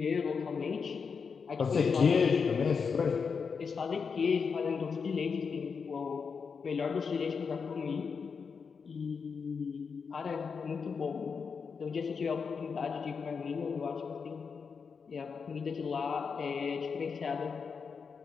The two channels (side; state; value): right; quieter; 5.7 dB